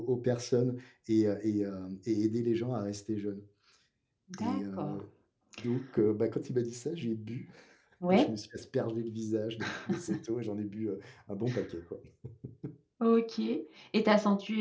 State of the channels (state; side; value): identical; both; correlation 1.00